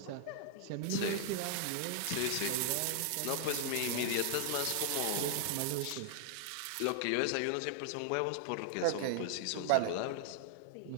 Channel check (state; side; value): different; both; correlation 0.00